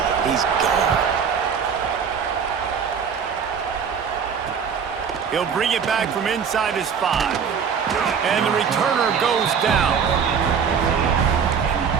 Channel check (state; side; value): quieter; left; 6.8 dB